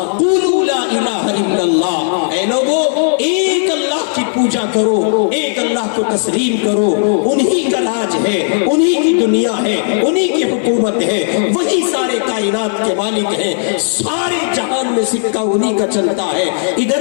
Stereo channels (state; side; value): silent; right; 63 dB below the other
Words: قولوا لا الہ الا اللہ، اے لوگو ایک اللہ کی پوجا کرو، ایک اللہ کو تسلیم کرو، انہی کا راج ہے، انہی کی دنیا ہے، انہی کی حکومت ہے، وہی سارے کائنات کے مالک ہیں، سارے جہان میں سکہ انہی کا چلتا ہے۔